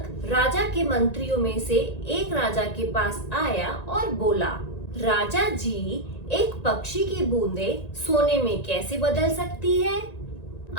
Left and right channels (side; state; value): right; late; 1.9 ms